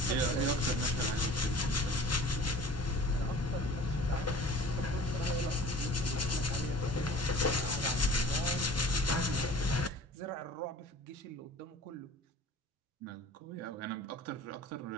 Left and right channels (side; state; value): both; normal; correlation 0.45